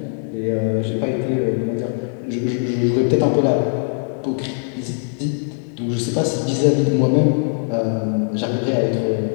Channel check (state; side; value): silent; right; 63 dB below the other